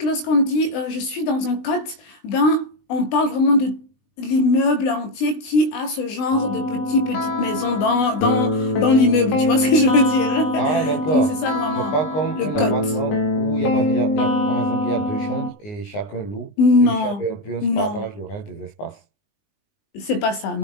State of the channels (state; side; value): late; right; 20 ms